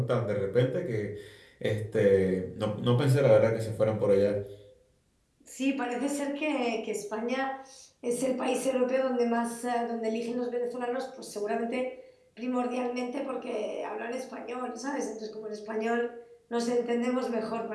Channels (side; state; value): both; identical; correlation 1.00